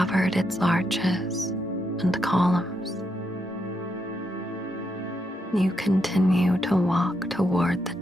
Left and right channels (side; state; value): both; normal; correlation 0.81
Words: its arches and columns. You continue to walk toward the